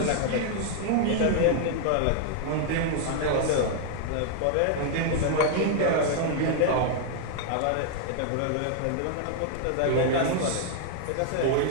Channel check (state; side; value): different; both; correlation 0.00